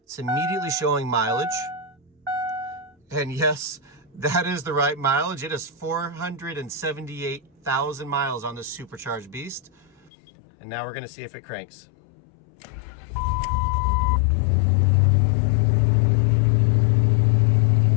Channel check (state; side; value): drops out; right; at 10.1 s